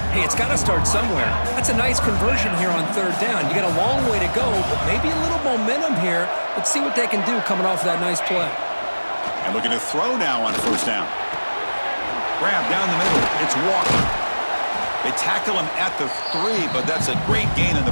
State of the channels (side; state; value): both; inverted; correlation -1.00